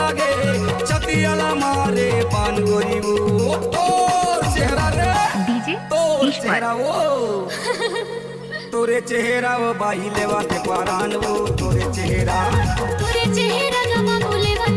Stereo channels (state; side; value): identical; both; correlation 1.00